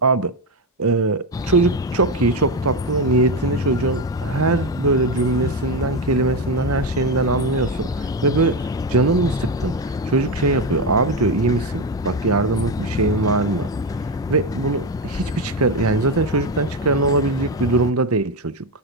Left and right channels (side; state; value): both; normal; correlation 0.12